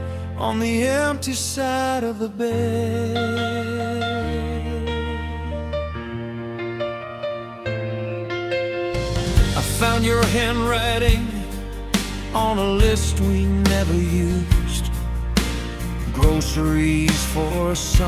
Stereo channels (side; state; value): both; identical; correlation 1.00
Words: on the empty side of the bed. I found your handwriting on a list we never used. Groceries for